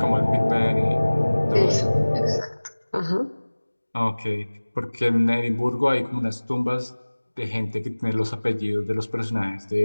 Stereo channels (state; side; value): inverted; both; correlation -1.00